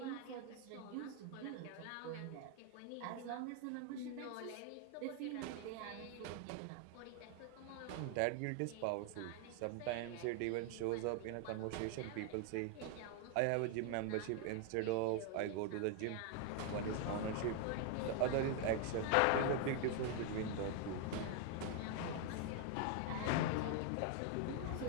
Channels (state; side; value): different; both; correlation 0.00